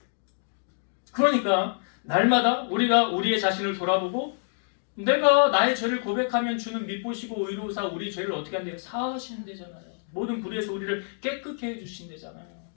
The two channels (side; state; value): right; silent; digital silence